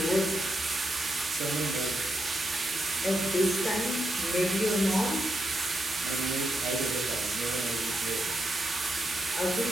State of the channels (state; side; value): normal; both; correlation 0.83